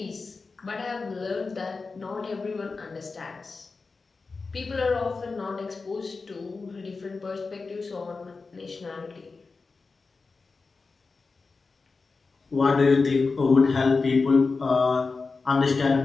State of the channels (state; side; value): quieter; right; 4.2 dB